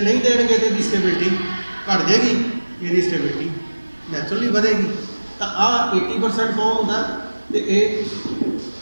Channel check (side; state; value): both; inverted; correlation -1.00